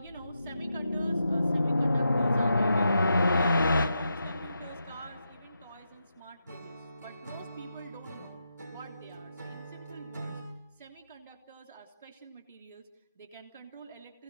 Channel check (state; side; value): inverted; both; correlation -0.85